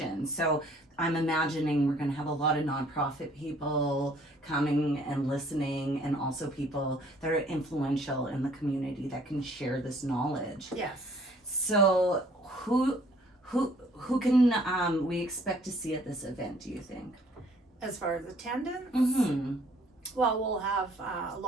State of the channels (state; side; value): normal; both; correlation 0.59